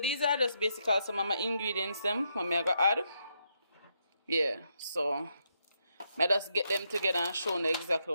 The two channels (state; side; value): inverted; both; correlation -0.80